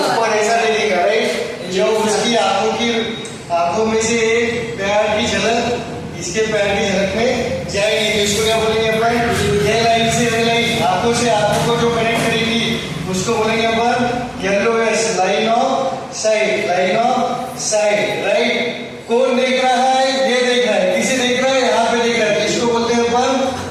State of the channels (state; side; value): identical; both; correlation 1.00